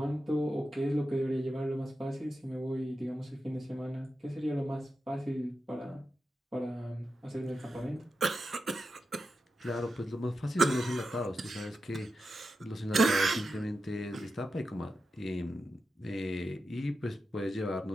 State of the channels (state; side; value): normal; both; correlation 0.90